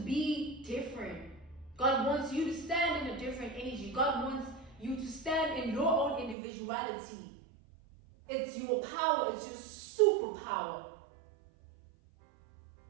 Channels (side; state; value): left; drops out; at 6.4 s